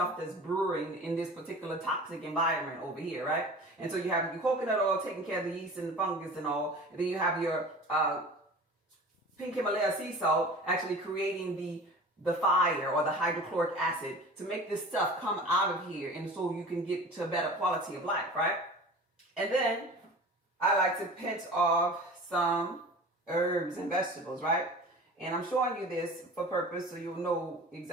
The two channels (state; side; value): normal; both; correlation 0.39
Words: that's brewing in this particular toxic environment over here, right? And so you have your coconut oil taking care of the yeast and the fungus and all. And then you have your pink Himalaya sea salt actually creating the fire or the hydrochloric acid to make this stuff come out of here. And so you can get to a better quality of life, right? And then I like to pinch off some herbs and vegetables, right? And I'm showing you this for purpose so you'll know